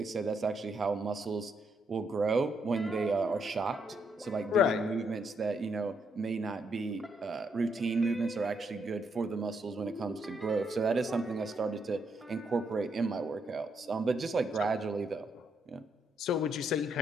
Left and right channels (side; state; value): both; normal; correlation 0.76